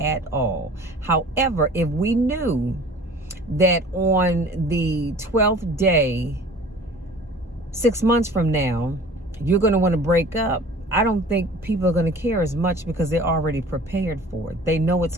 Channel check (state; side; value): normal; both; correlation 0.45